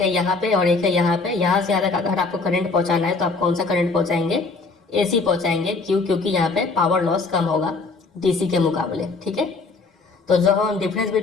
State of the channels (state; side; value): quieter; right; 3.9 dB